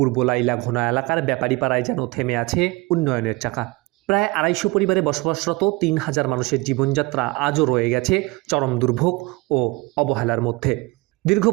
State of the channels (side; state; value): left; quieter; 24.1 dB